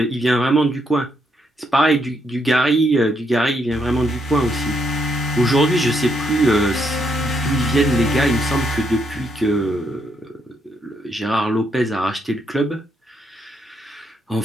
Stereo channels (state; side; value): normal; both; correlation 0.76